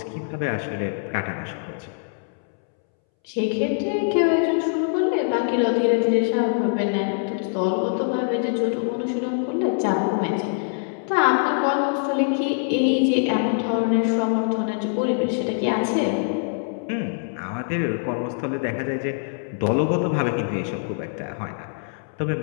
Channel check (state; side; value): silent; right; 63 dB below the other